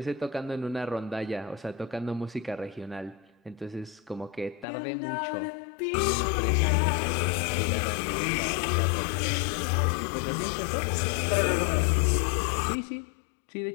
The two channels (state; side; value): drops out; right; at 4.7 s